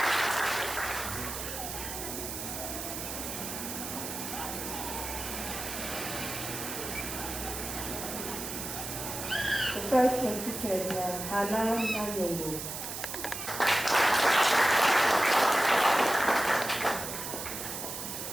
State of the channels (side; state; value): right; noise; hiss, 6 dB below the sound